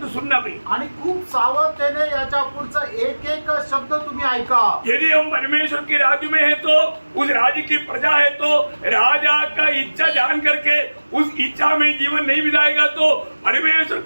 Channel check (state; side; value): inverted; both; correlation -1.00